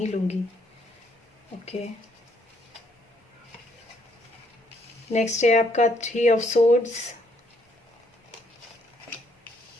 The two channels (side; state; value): both; normal; correlation 0.69